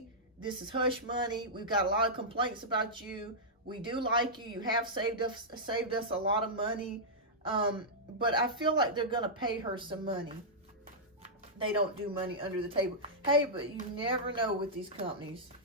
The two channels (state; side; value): normal; both; correlation -0.11